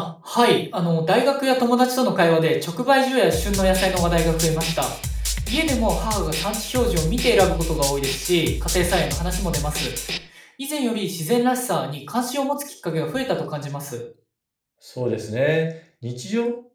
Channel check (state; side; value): identical; both; correlation 1.00